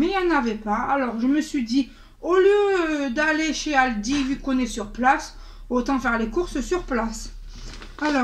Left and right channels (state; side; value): identical; both; correlation 1.00